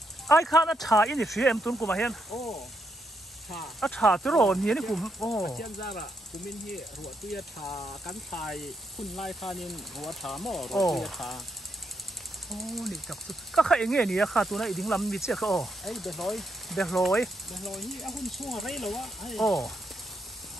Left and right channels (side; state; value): both; normal; correlation 0.79